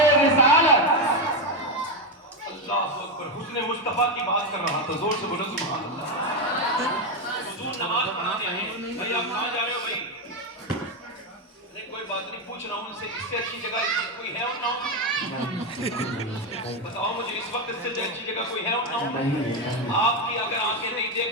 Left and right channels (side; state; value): both; normal; correlation 0.08